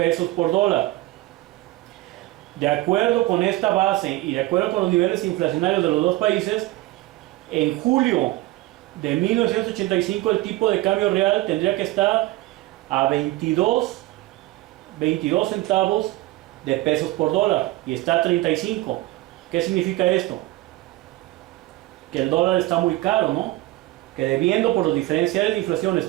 por dólar. De acuerdo con esta base y de acuerdo con los niveles inflacionarios de los dos países, en julio de 1985 el tipo de cambio real tendría que estar a 22 centavos de pesos por dólar y está a 35. ¿Qué significa esto? Que el dólar está muy caro, ¿no? Que debiendo por los diferenciales de inflación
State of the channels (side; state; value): left; quieter; 18.6 dB